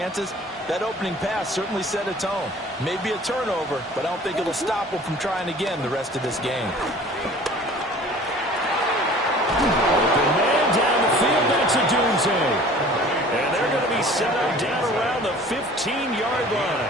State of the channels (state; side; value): normal; both; correlation 0.47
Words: That opening pass certainly set a tone. Maybe a turnover, but I don't think it'll stop them from trying again the rest of this game. Open man down the field, that's a doomsday. And they're going to be set up down around the 15-yard